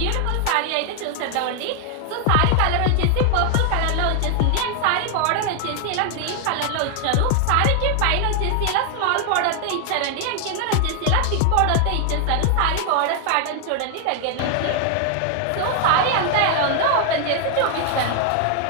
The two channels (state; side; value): different; both; correlation 0.00